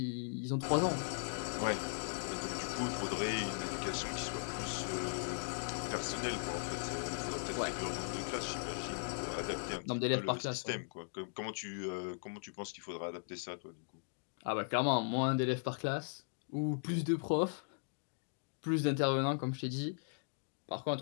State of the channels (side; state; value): right; silent; digital silence